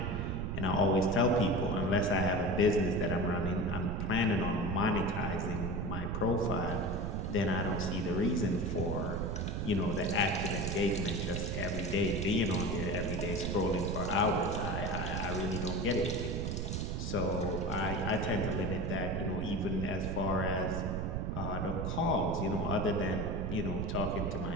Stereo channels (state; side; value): noise; right; rumble, 2 dB below the sound